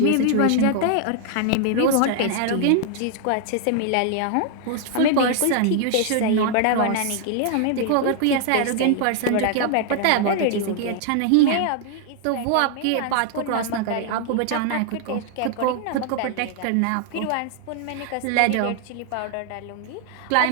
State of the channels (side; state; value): both; different; correlation 0.00